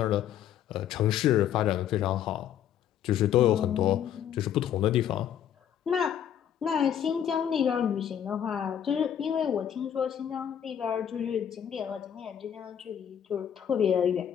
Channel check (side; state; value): right; quieter; 9.6 dB